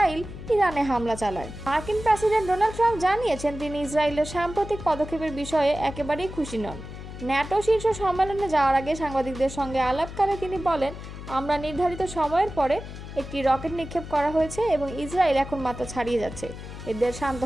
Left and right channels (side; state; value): left; noise; hum, 11 dB below the sound